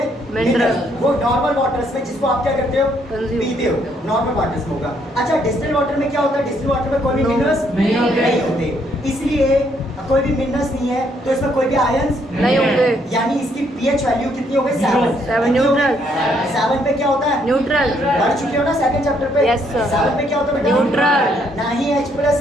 Minerals। वो नॉर्मल वाटर्स में जिसको आप क्या करते हो? Consume। पीते हो, नॉर्मल वाटर्स में होगा। अच्छा, डिस्टिल वाटर में क्या होता है? डिस्टिल वाटर में कोई भी No। मिनरल्स नहीं होते। नहीं होते, इसलिए कोई भी मिनरल्स नहीं है तो इसमें कोई भी आयंस नहीं होंगे। यानी इसकी पीएच वैल्यू कितनी हो गई? Zero। 7। न्यूट्रल। 7 पे क्या होता है? न्यूट्रल। पढ़ चुके हो ना सेकंड चैप्टर पे? Yes, sir। 7 पे क्या होता है बेटा? न्यूट्रल। ना ही H+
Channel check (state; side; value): normal; both; correlation 0.70